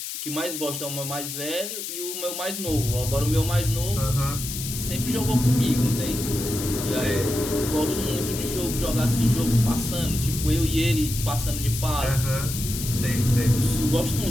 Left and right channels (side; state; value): left; noise; hiss, 6 dB below the sound